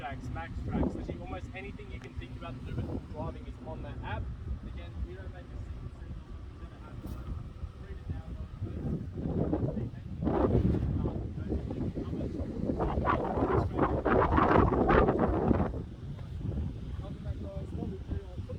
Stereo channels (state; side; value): identical; both; correlation 1.00